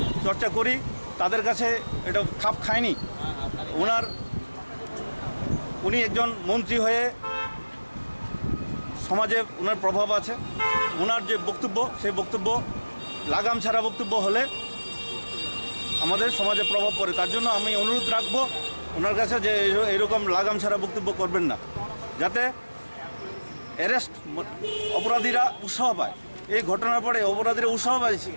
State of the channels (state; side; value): inverted; both; correlation -1.00